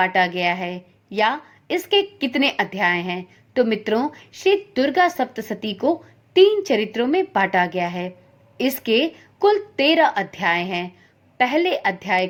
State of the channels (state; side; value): identical; both; correlation 1.00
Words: गया है या इसके कितने अध्याय हैं? तो मित्रों, श्री दुर्गा सप्तशती को 3 चरित्रों में बांटा गया है। इसके कुल 13 अध्याय हैं। पहले अध्याय